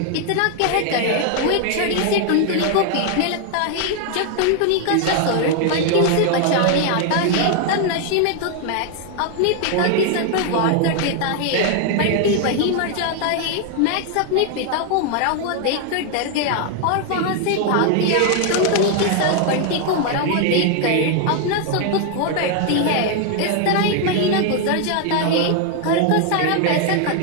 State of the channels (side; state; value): both; different; correlation 0.00